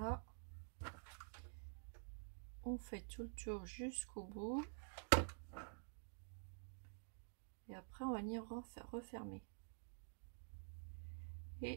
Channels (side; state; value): left; silent; digital silence